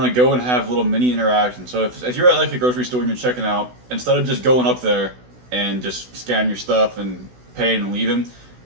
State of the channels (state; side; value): late; left; 16 ms